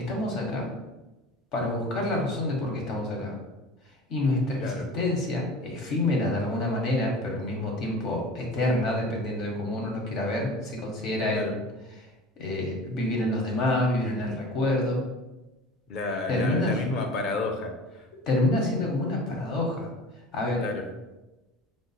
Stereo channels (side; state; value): both; normal; correlation 0.40